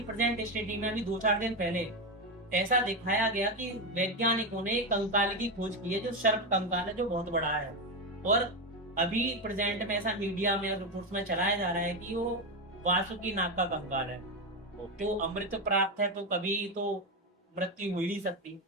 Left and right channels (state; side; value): normal; both; correlation 0.12